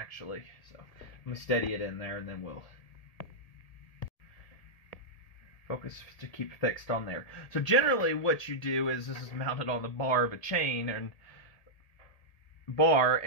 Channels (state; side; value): late; right; 1.8 ms